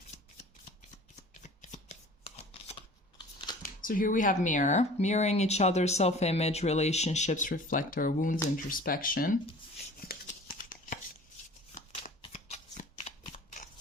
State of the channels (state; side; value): normal; both; correlation 0.45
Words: So here we have mirror. Mirroring each other, self-image, relationships reflect our wounds, introspection.